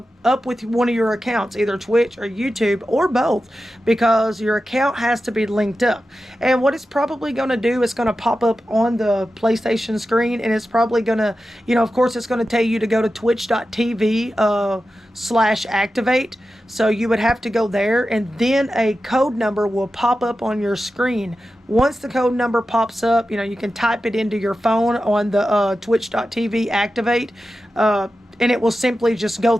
with one of your accounts, either Twitch or YouTube or both, because your account has to be linked up. And what it's probably going to do is going to pop up on the PlayStation screen, and it's probably going to, of course, it's going to tell you to go to twitch.tv /activate. So you would have to go there, and then a code number will pop up on your screen. Once the code number pops up, you can type it into your phone on the twitch.tv activate, and it will simply just go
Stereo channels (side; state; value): both; normal; correlation 0.92